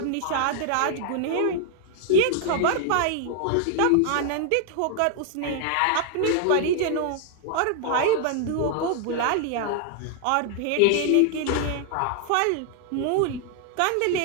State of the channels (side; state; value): both; different; correlation 0.00